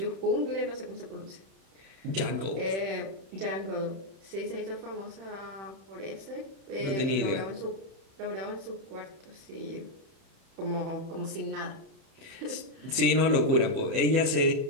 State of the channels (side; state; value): left; late; 30 ms